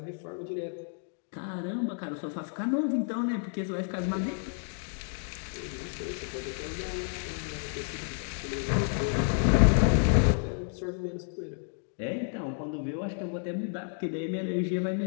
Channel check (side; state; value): right; silent; 57 dB below the other